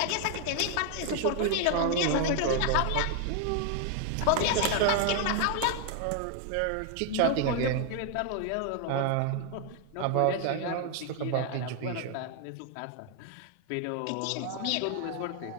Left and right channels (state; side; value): different; both; correlation 0.00